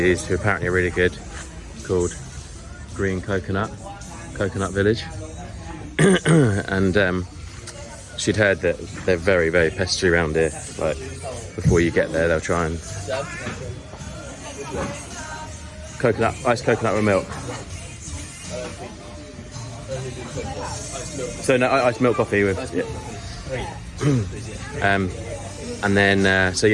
who apparently are really good, called Green Coconut Village. And she'd heard that they're very, very pestery around here. Like, before you get there, they'll try and... Iced coconut with milk. So no, iced milk coffee with... Yeah. And then, so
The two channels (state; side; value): identical; both; correlation 1.00